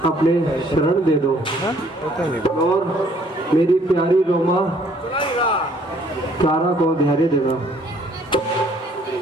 अपने शरण दे दो और मेरी प्यारी रोमा क्लारा को धैर्य देना।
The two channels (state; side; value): normal; both; correlation 0.62